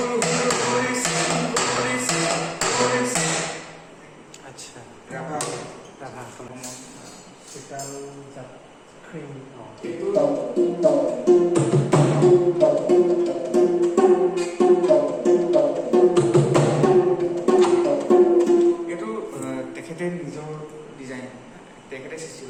আচ্ছা ৰাভা হ'ল ৰাভা চিতাল জাত ক্ৰীম অঁ এইটো তেখেতে নিজৰ ডিজাইন তেখেতে সৃষ্টি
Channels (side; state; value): both; identical; correlation 1.00